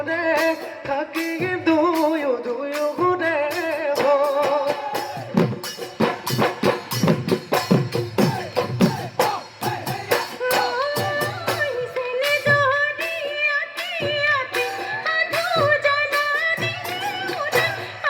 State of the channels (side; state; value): both; identical; correlation 1.00